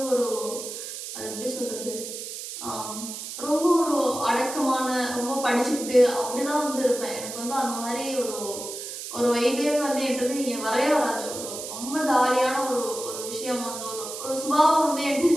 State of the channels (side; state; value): right; noise; hiss, 8 dB below the sound